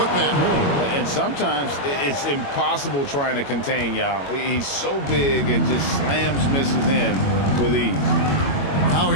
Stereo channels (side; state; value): right; late; 21 ms